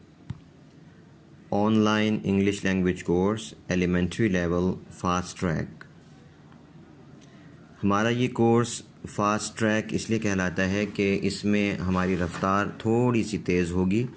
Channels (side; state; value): both; identical; correlation 1.00